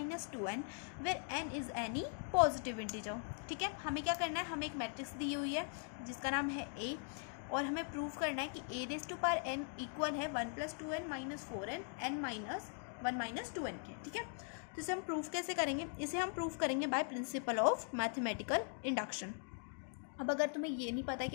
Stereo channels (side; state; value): right; silent; 51 dB below the other